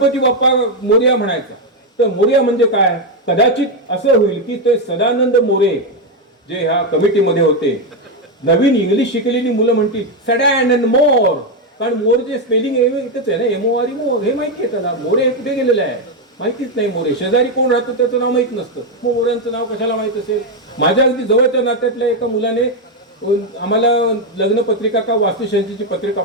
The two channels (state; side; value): normal; both; correlation 0.05